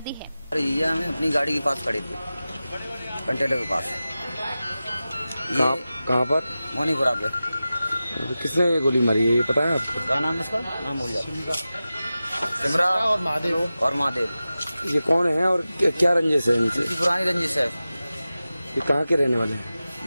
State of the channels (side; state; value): both; inverted; correlation -0.95